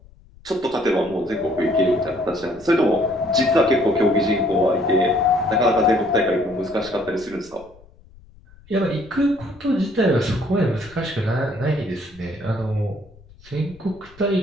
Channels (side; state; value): left; noise; rumble, 25 dB below the sound